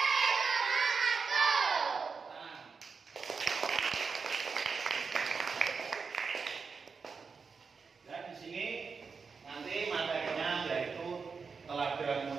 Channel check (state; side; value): quieter; left; 5.2 dB